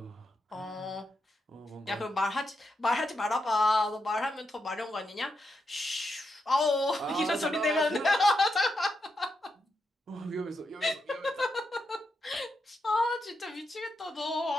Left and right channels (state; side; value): normal; both; correlation 0.84